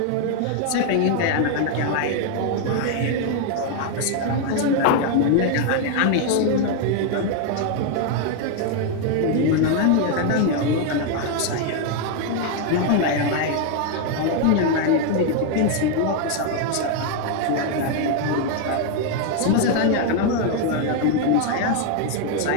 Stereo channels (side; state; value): both; different; correlation 0.00